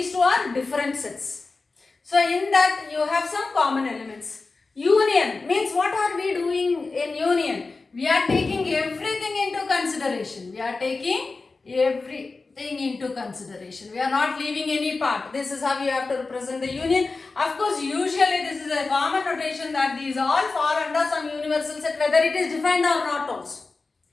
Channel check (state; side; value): quieter; right; 3.9 dB